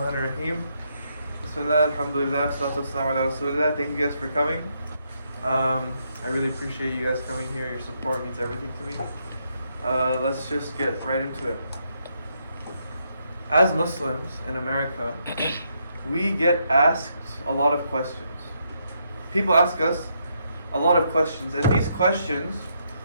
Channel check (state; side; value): inverted; both; correlation -0.77